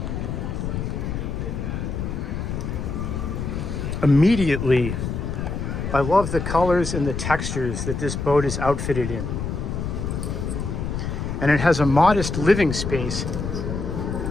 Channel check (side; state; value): left; noise; rumble, 3 dB below the sound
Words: Immediately, I love the colors and the textures that this boat is outfitted in. And it has a modest living space,